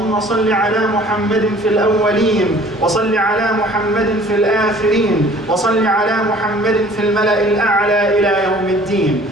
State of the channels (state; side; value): normal; both; correlation 0.51